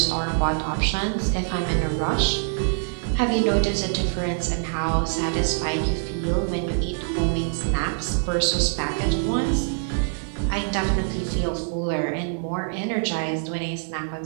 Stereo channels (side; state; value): left; silent; digital silence